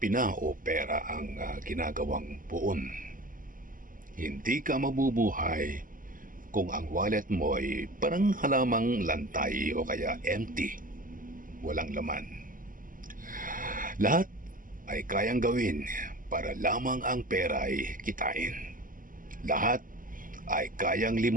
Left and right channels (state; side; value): late; left; 0.40 ms